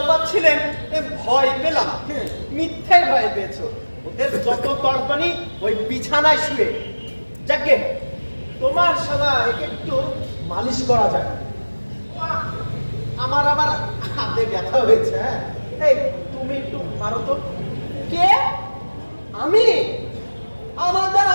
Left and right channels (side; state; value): both; inverted; correlation -1.00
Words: ভয় পেলাম। মিথ্যে ভয় পেয়েছো। ওদের যত তর্পণী ওই বিছানায় শুয়ে। যাকে তোমার শালা একে একটু মালিশ করা যায়। আমার আবার হাতে ব্যথা হয়েছে। হ্যাঁ, এই তুমি একটু মারো তো। কে? আমি? আমার দ্বারা